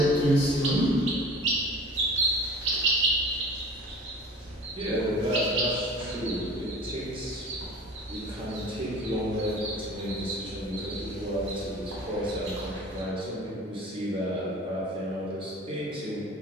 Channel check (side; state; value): both; normal; correlation 0.41